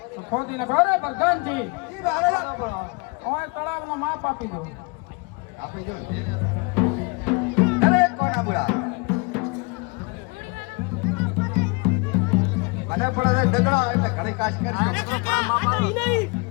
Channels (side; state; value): right; quieter; 29.8 dB